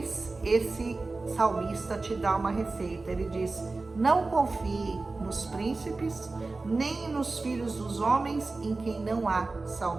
esse salmista te dá uma receita. Ele diz: não confie nos príncipes, nem nos filhos dos homens em quem não há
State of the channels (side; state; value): left; quieter; 3.5 dB